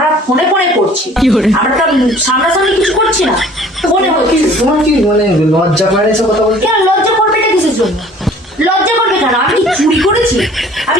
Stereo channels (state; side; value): normal; both; correlation 0.51